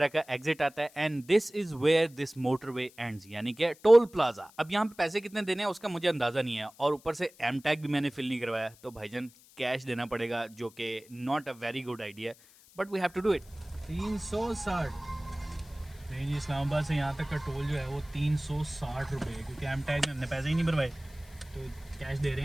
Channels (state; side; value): noise; left; hiss, 25 dB below the sound